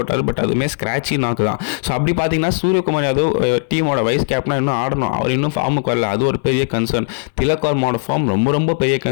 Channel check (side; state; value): right; silent; 62 dB below the other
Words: பட் அதுவுமே ஸ்க்ராட்சி நாக்கு தான். ஸோ அப்படி பார்த்தீங்கன்னா சூரியகுமார் யாதவ் டீமோட வைஸ் கேப்டனாக இன்னும் ஆடணும். அவர் இன்னும் ஃபார்முக்கு வரல, அது ஒரு பெரிய கன்சர்ன். திலக் வர்மாவோட ஃபார்ம் ரொம்ப ரொம்ப பெரிய